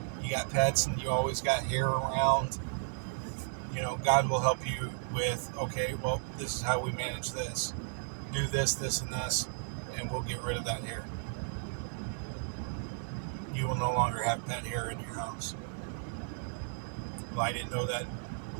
got pets and you always got hair around, God will help you with, okay, well, this is how we manage this. Do this, this, and this, and we'll get rid of that hair. You will no longer have pet hair in your house. Well, I didn't know that.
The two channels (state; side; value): silent; left; 55 dB below the other